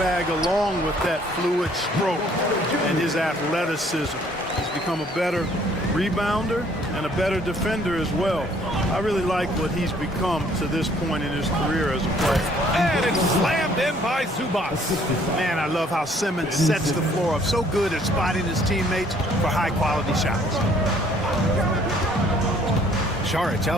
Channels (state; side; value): normal; both; correlation 0.61